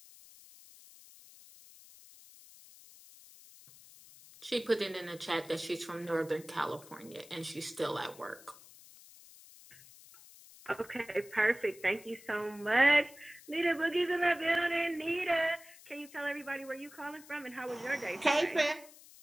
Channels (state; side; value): noise; left; hiss, 21 dB below the sound